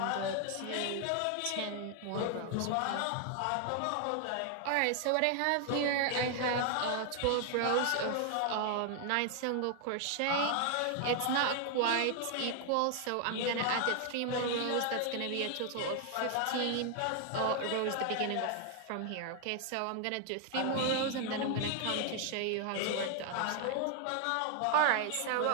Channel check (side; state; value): both; different; correlation 0.00